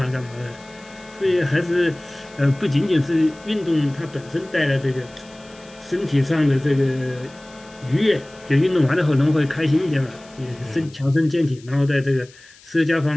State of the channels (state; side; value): noise; left; hiss, 25 dB below the sound